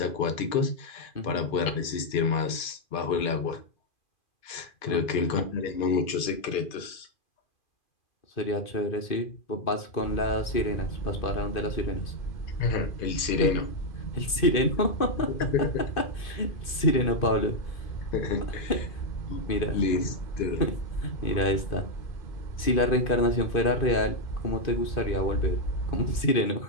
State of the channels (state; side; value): late; right; 2.5 ms